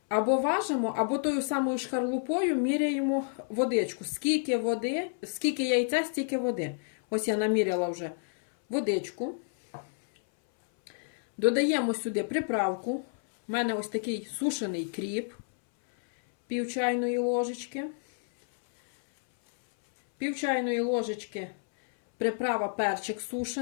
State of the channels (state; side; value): silent; right; 58 dB below the other